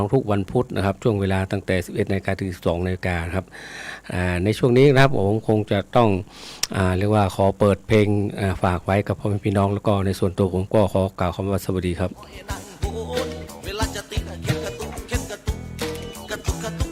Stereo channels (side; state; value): both; identical; correlation 1.00